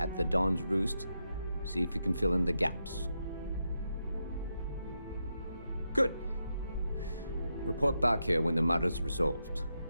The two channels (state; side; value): inverted; both; correlation -0.85